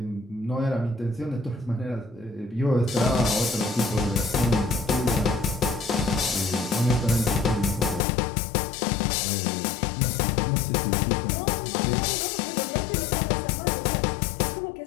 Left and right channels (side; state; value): right; drops out; at 8.0 s